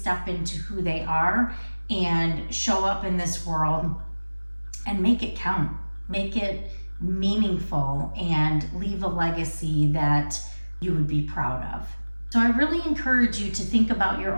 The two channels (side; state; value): both; inverted; correlation -1.00